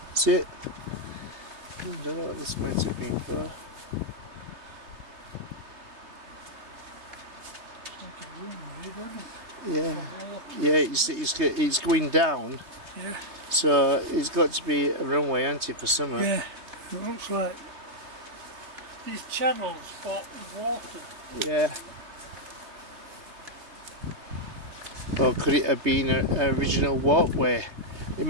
See it? I don't know what this might have been for. Yeah. Yeah, it's going down. Yeah. So it's got to be a runway, hasn't it, for summer? Yeah. It looks like these channels for water. Yeah. Or could it have been an original walkway? It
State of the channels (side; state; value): left; late; 3.2 ms